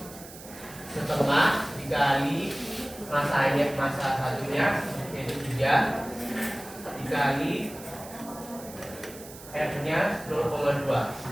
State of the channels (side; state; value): right; noise; hiss, 16 dB below the sound